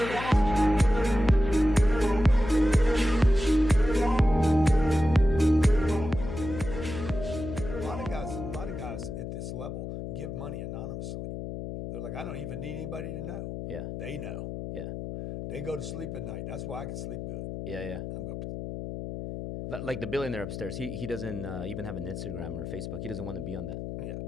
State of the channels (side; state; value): left; noise; hum, 7 dB below the sound